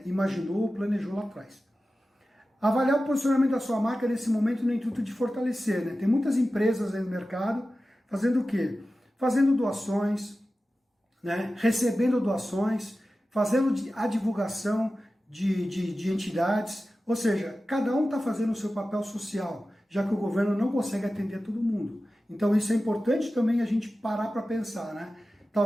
imaginou ou planejou lá atrás. Avaliar o posicionamento da sua marca nesse momento no intuito de fortalecer. Né? Tem muitas empresas aí no mercado fazendo o quê? Fazendo doações, né? Recebendo doações, fazendo a divulgação de entidades, ou seja, cada um está fazendo o seu papel social, já que o governo não consegue atender todo mundo. Então isso é importante também a gente parar para pensar, né?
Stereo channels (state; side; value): normal; both; correlation 0.94